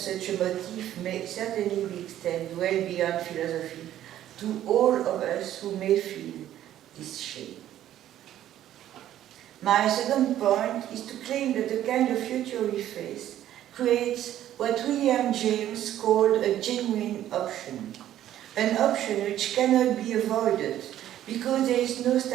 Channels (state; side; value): quieter; left; 12.1 dB